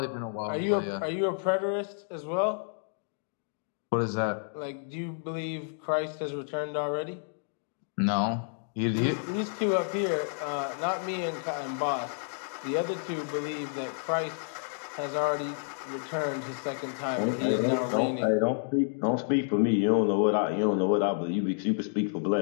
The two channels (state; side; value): silent; right; digital silence